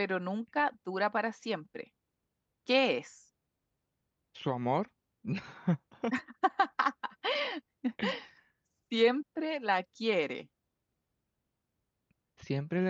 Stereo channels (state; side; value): identical; both; correlation 1.00